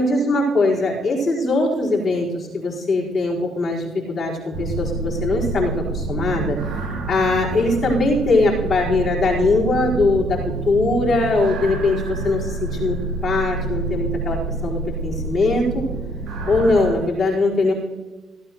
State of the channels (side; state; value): both; normal; correlation 0.70